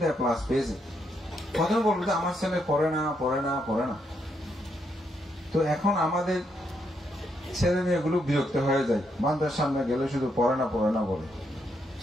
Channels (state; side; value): normal; both; correlation 0.78